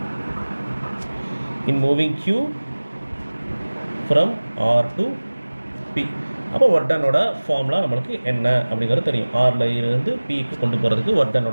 in moving Q from R to P. அப்போ ஒர்க் டனோட ஃபார்முலா நம்மளுக்கு என்ன அப்படிங்கிறது தெரியும். ஆரில் இருந்து பிக்கு கொண்டு போகிறதுக்கு ஒர்க்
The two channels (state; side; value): inverted; both; correlation -1.00